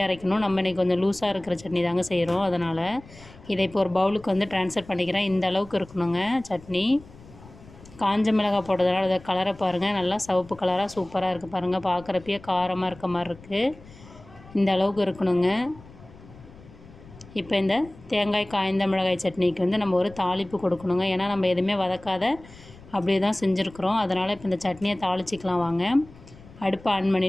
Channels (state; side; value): noise; left; rumble, 21 dB below the sound